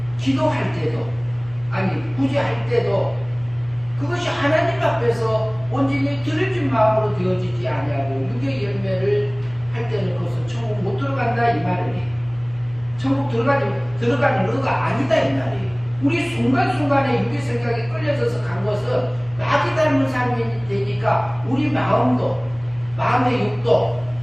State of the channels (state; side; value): noise; left; hum, 21 dB below the sound